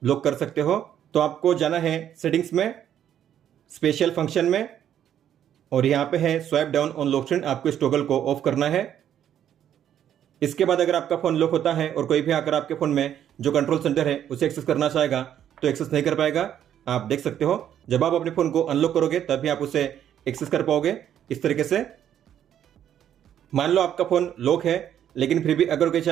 लॉक कर सकते हो। तो आपको जाना है सेटिंग्स में, स्पेशल फंक्शन में, और यहाँ पे है swipe down on lock screen, आपको इस टॉगल को ऑफ करना है। इसके बाद अगर आपका फोन लॉक होता है और कोई भी आकर आपके फोन में जो कंट्रोल सेंटर है उसे एक्सेस करना चाहेगा तो एक्सेस नहीं कर पाएगा। आप देख सकते हो जब आप अपने फोन को अनलॉक करोगे तभी आप उसे एक्सेस कर पाओगे इस तरीके से। मान लो आपका फोन लॉक है, लेकिन फिर भी अगर कोई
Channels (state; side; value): quieter; left; 10.1 dB